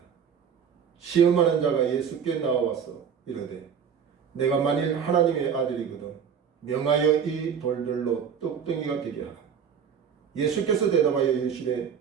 시험하는 자가 예수께 나와서 이르되 내가 만일 하나님의 아들이거든 명하여 이 돌들로 떡덩이가 되게 하라. 예수께서 대답하여 이르시되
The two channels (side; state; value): left; quieter; 7.3 dB